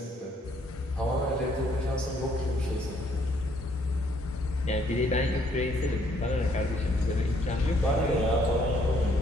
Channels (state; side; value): normal; both; correlation 0.67